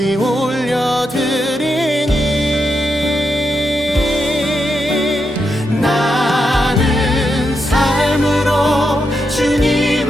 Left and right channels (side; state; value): both; normal; correlation 0.84